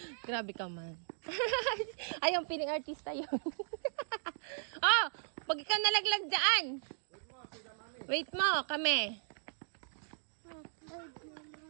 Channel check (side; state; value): left; silent; digital silence